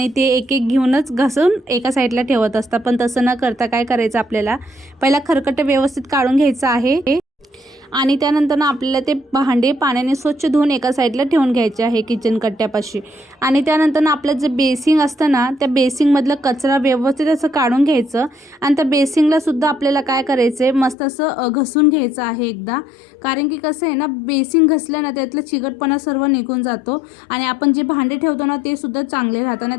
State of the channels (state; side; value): drops out; right; at 21.0 s